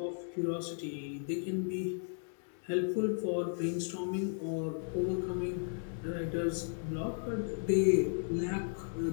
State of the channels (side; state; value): right; silent; digital silence